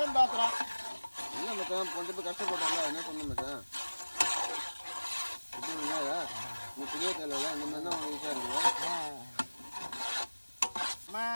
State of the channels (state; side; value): inverted; both; correlation -1.00